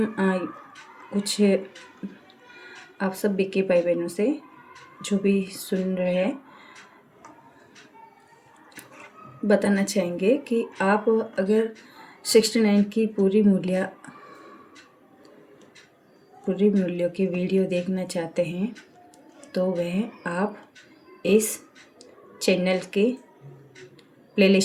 कुछ आप सब बीके भाई बहनों से जो भी सुन रहे हैं बताना चाहेंगे कि आप अगर 69 की पूरी मूल्यों की वीडियो देखना चाहते हैं तो वह आप इस चैनल के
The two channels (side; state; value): both; identical; correlation 1.00